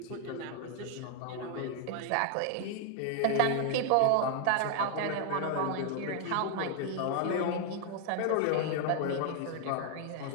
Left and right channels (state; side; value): different; both; correlation 0.00